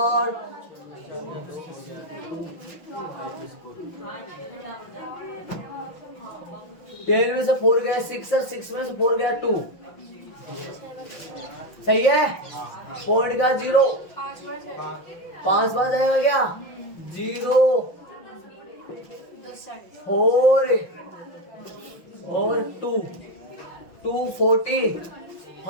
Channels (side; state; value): right; late; 5.9 ms